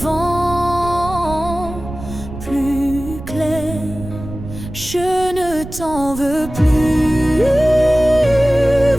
plus clair. Je ne t'en veux plus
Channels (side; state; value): right; noise; rumble, 12 dB below the sound